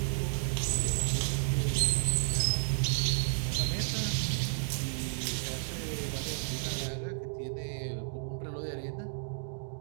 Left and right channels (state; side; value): silent; left; digital silence